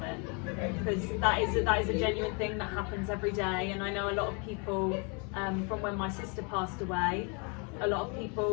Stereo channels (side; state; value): right; quieter; 34.4 dB